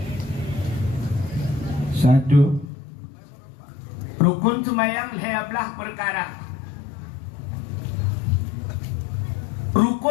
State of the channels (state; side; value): drops out; right; at 2.7 s